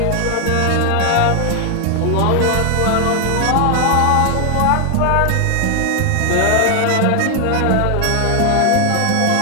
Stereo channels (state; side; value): different; both; correlation 0.00